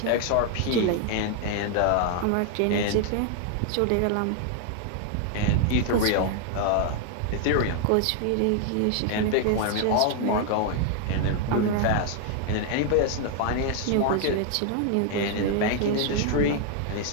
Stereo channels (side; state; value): both; different; correlation 0.00